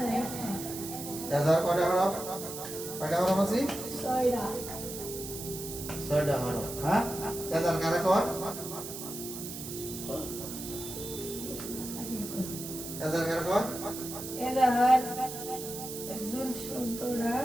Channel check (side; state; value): right; noise; hiss, 9 dB below the sound